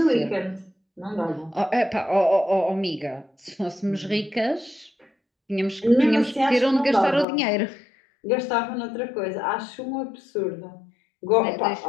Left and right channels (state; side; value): drops out; right; at 7.2 s